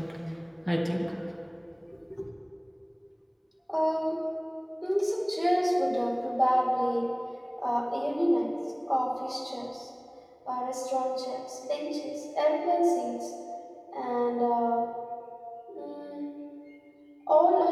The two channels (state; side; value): identical; both; correlation 1.00